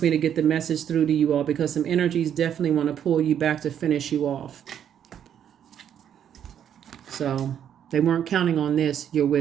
me to get the message through to you all, because some energies definitely want to pull you back to finish you off. So they weren't counting on this, your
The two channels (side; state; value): left; quieter; 9.3 dB